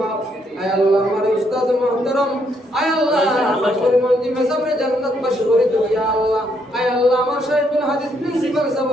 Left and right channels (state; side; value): normal; both; correlation 0.73